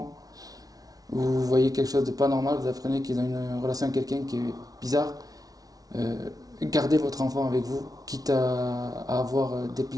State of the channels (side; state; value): left; late; 0.18 ms